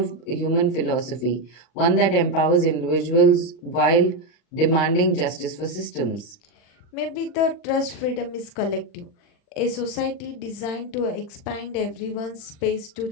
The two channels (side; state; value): right; late; 40 ms